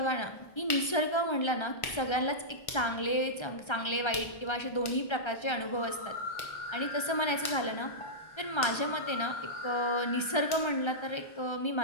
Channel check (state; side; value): late; right; 1.3 ms